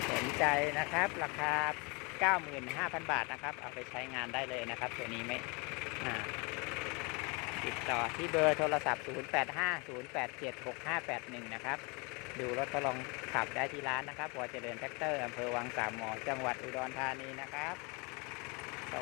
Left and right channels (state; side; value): quieter; right; 30.0 dB